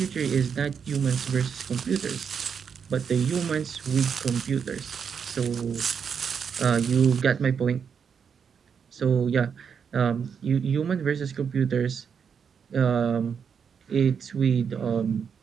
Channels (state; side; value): quieter; left; 6.8 dB